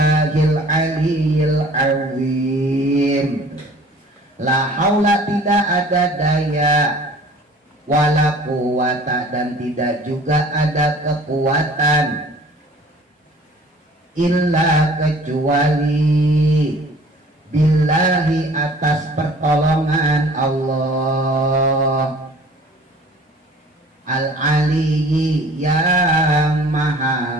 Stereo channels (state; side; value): normal; both; correlation 0.49